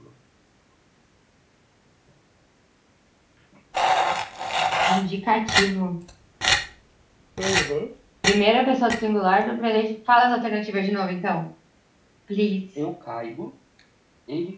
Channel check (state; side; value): identical; both; correlation 1.00